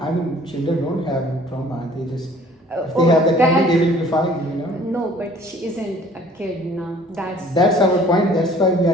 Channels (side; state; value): both; normal; correlation 0.53